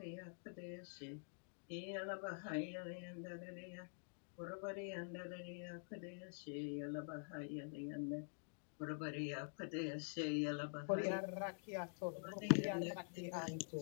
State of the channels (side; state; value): right; silent; digital silence